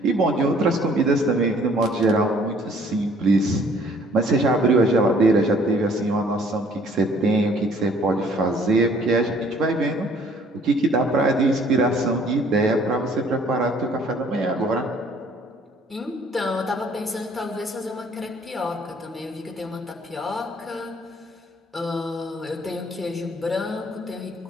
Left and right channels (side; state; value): both; normal; correlation 0.58